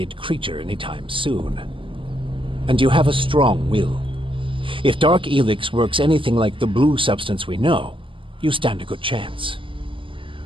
creature anytime soon. And you have a strong will. If Dark Elex works anything like the blue substance we know, you stand a good chance.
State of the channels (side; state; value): left; late; 0.25 ms